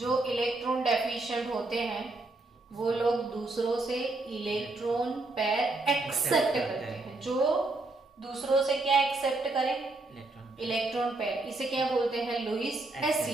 इलेक्ट्रॉन डेफिशिएंट होते हैं वो लोग दूसरों से इलेक्ट्रॉन पेयर एक्सेप्ट करते हैं। जो दूसरों से क्या एक्सेप्ट करें, इलेक्ट्रॉन पेयर, इसे क्या बोलते हैं, लुईस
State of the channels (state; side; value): quieter; left; 3.1 dB